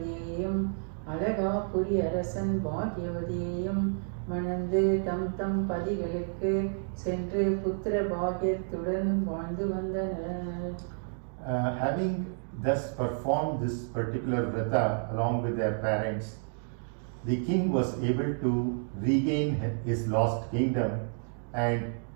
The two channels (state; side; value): silent; left; digital silence